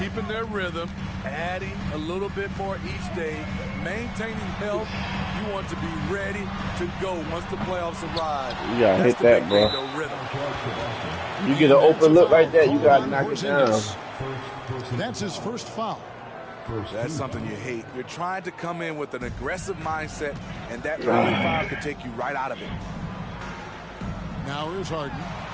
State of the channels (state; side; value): identical; both; correlation 1.00